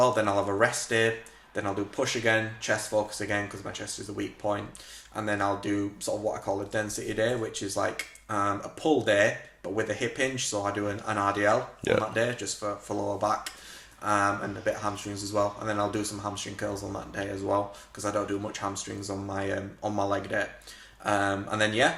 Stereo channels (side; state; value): both; identical; correlation 1.00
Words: Then I'll have a rest day. Then I'll do push again, chest focus again because my chest is a weak point. And then I'll do sort of what I call a density day, which is like a pull day, but with a hip hinge. So I do an RDL on that day, just for lower back, and a bit of hamstrings as well. And then I'll do some hamstring curls on that day as well, because I don't do much hamstrings on my leg day. And